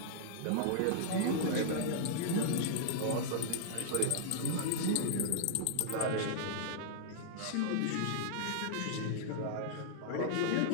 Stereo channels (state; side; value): different; both; correlation -0.01